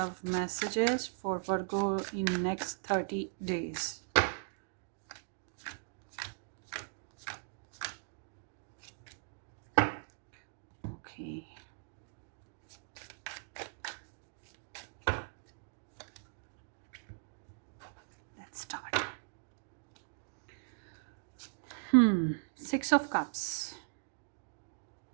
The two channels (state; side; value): silent; left; digital silence